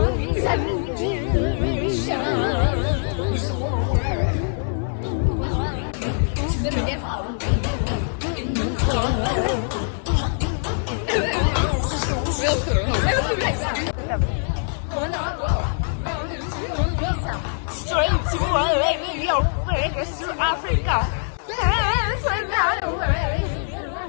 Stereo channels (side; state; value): right; silent; digital silence